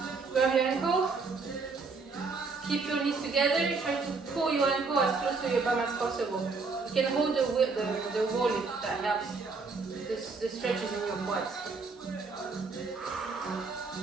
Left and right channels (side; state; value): left; quieter; 4.3 dB